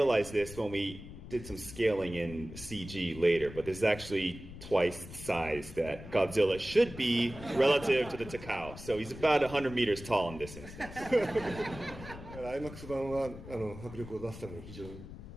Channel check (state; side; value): noise; left; rumble, 13 dB below the sound